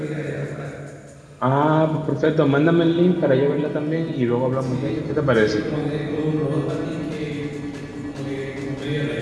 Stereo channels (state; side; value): identical; both; correlation 1.00